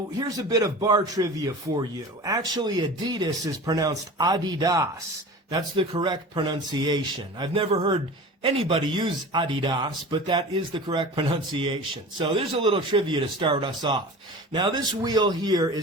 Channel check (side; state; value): both; normal; correlation 0.36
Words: here's a bit of bar trivia for you. Actually Adidas is pronounced adidas. That's the correct pronunciation. I've never heard anybody use adidas, but that is the correct pronunciation. So there's a little trivia to start us off. Now this wheel here